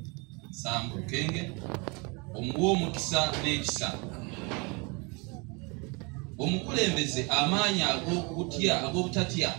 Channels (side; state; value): left; quieter; 30.1 dB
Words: Sambu Lukenge, omuwa omukisa n'ekisa, omukulembeze amaanyi ag'obutatya,